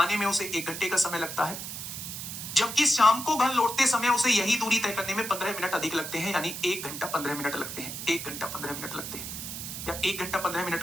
में उसे 1 घंटे का समय लगता है, जबकि शाम को घर लौटते समय उसे यही दूरी तय करने में 15 मिनट अधिक लगते हैं, यानी 1 घंटा 15 मिनट लगते हैं, 1 घंटा 15 मिनट लगते हैं। या 1 घंटा 15 मिनट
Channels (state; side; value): noise; right; hiss, 7 dB below the sound